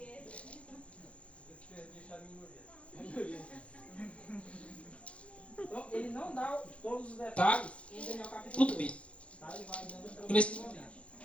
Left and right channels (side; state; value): right; late; 0.062 ms